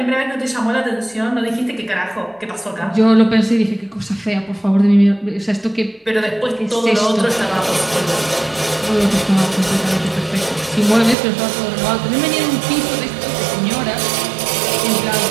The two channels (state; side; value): drops out; left; at 11.2 s